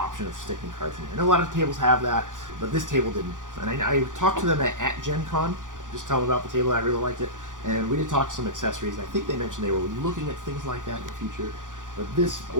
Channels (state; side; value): late; left; 0.88 ms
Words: of sticking cards in here. I know a lot of tables have that, but this table didn't. And I talked to them at Gen Con, just tell them about the table. I really liked it. And we did talk some accessories. I think they mentioned they were looking at things like that in the future. But this